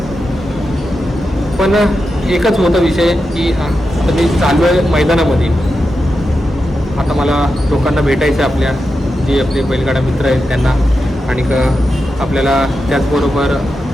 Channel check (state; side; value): normal; both; correlation 0.89